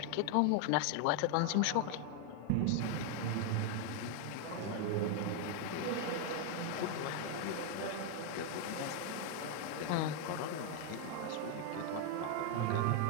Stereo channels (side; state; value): both; different; correlation 0.01